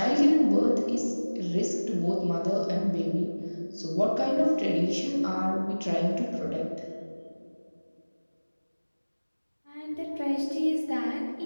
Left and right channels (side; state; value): both; inverted; correlation -1.00